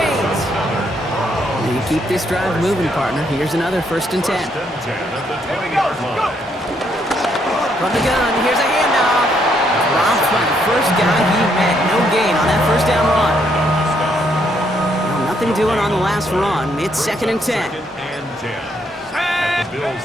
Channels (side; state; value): both; normal; correlation 0.73